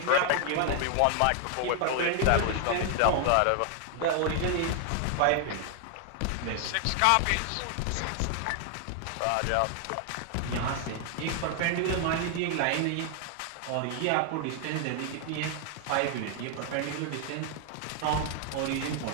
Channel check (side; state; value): both; different; correlation 0.00